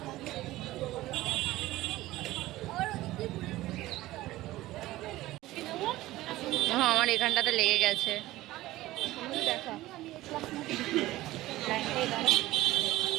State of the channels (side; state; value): left; quieter; 16.9 dB